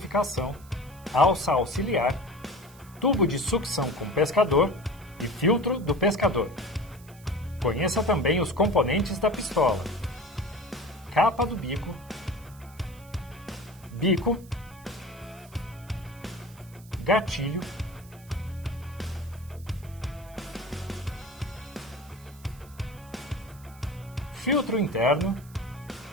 alça auxiliar, tubo de sucção com pescador e filtro do pescador. Conheça também os componentes da pistola: capa do bico, bico, gatilho, filtro interno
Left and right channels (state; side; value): noise; right; hiss, 24 dB below the sound